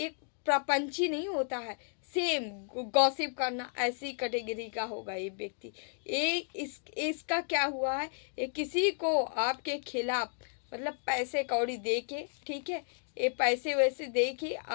प्रपंची नहीं होता है, सेम गॉसिप करना, ऐसी कैटेगरी का होगा ये व्यक्ति। इसका क्या हुआ है, ये किसी को आपके खिलाफ, मतलब पैसे कौड़ी दे के, ठीक है, ये पैसे वैसे दे के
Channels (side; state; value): right; silent; 56 dB below the other